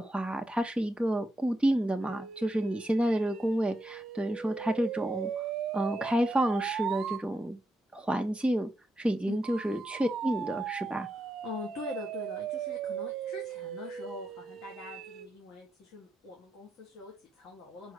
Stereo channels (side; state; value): both; normal; correlation 0.84